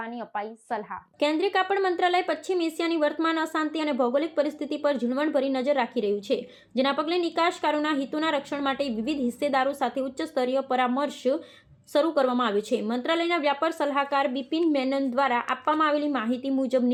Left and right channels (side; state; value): both; identical; correlation 1.00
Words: અપાઈ સલાહ. કેન્દ્રીય કાપડ મંત્રાલય પશ્ચિમ એશિયાની વર્તમાન અશાંતિ અને ભૌગોલિક પરિસ્થિતિ પર ઝીણવટભરી નજર રાખી રહ્યું છે, જેના પગલે નિકાસકારોના હિતોના રક્ષણ માટે વિવિધ હિસ્સેદારો સાથે ઉચ્ચ સ્તરીય પરામર્શ શરૂ કરવામાં આવ્યો છે. મંત્રાલયના વ્યાપાર સલાહકાર બિપિન મેનન દ્વારા આપવામાં આવેલી માહિતી મુજબ